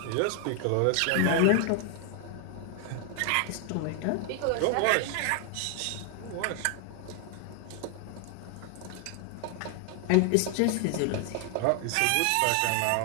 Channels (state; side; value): different; both; correlation 0.00